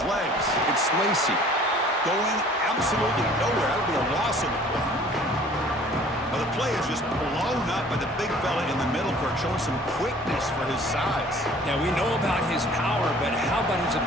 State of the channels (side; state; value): both; normal; correlation 0.51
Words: legs. It's Lacey. Going absolutely nowhere. That'll be a loss of the play. Well, the play is just blown up by the big fella in the middle, Kirk, showing some quickness for his size. Yeah, we know about his power, but how about his